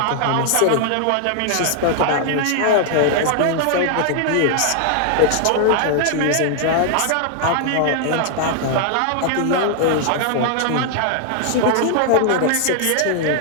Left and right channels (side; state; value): both; different; correlation 0.00